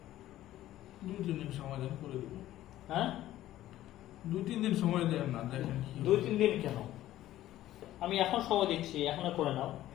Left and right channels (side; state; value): right; quieter; 14.0 dB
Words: 2-3 দিন সময় দেন, করে দেবো। হ্যাঁ, 2-3 দিন সময় দেন না, দেখেন কি হয়। 2-3 দিন কেন? আমি এখন সময় দিচ্ছি, এখনো করে নাও।